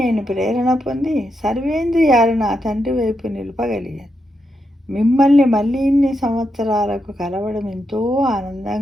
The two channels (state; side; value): normal; both; correlation 0.83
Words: ప్రేరణ పొంది సర్వేంద్రియాలు నా తండ్రి వైపు నిలపగలిగాను. మిమ్మల్ని మళ్ళీ ఇన్ని సంవత్సరాలకు కలవడం ఎంతో